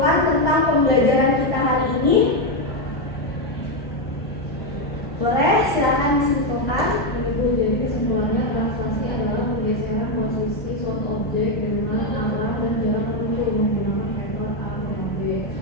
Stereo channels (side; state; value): both; normal; correlation 0.05